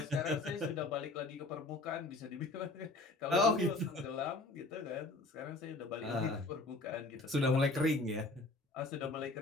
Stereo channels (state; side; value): quieter; right; 3.0 dB